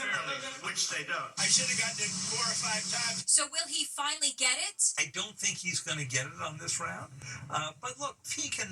which they don't. I should have gotten it 4 or 5 times. So will he finally get it? I don't think he's going to get it on this round. But look, he can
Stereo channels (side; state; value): both; identical; correlation 1.00